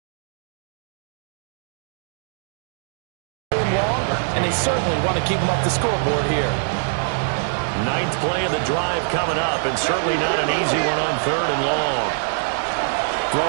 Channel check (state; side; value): silent; left; digital silence